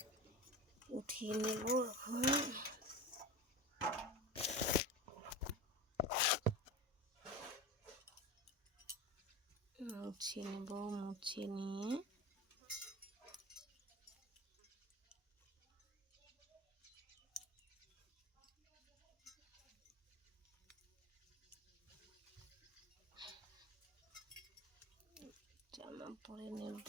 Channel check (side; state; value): both; normal; correlation 0.29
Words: উঠিয়ে নেব এখন। মুছে নিয়ে জামা পরে